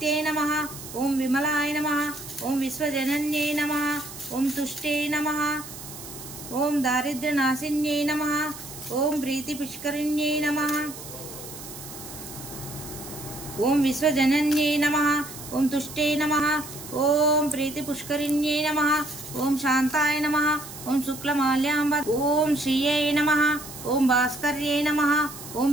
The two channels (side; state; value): right; noise; hiss, 13 dB below the sound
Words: నమః. ఓం విమలాయ నమః. ఓం విశ్వజనన్యే నమః. ఓం తుష్టే నమః. ఓం దారిద్ర్యనాశిన్యే నమః. ఓం ప్రీతిపుష్కరిణ్యే నమః. ఓం విశ్వజనన్యే నమః. ఓం తుష్టే నమః. ఓం ప్రీతిపుష్కరిణ్యే నమః. ఓం శాంతాయ నమః. ఓం శుక్లమాల్యాంబ. ఓం శ్రీయై నమః. ఓం భాస్కర్యే నమః. ఓం